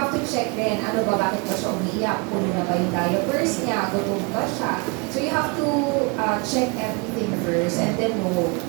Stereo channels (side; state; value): left; quieter; 30.6 dB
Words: to check din, ano ba, bakit ba siya umiiyak? Puno na ba yung diapers niya? Gutom ba siya? So you have to check everything first and then know.